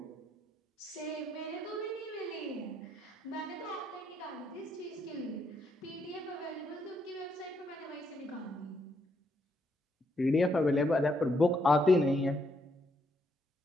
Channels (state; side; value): normal; both; correlation 0.75